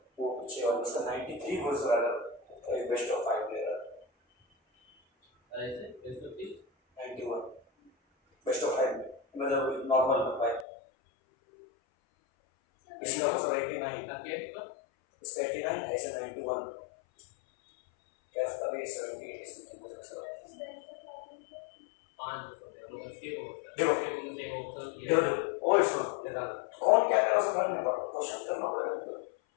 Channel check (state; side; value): drops out; right; at 10.7 s